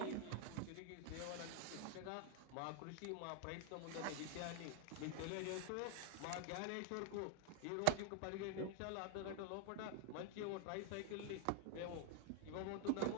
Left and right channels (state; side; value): different; both; correlation 0.00